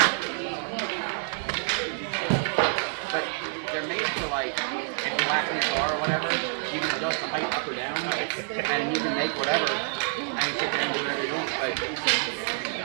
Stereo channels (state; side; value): silent; left; 56 dB below the other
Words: But they're made for like, if you lack in your car or whatever, you can adjust the height up or down, and you can make whatever, and you sit there and do whatever you're doing. Like,